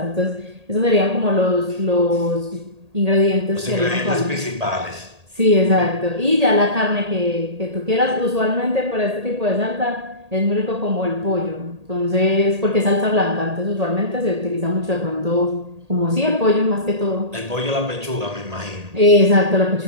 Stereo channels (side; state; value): left; late; 1.8 ms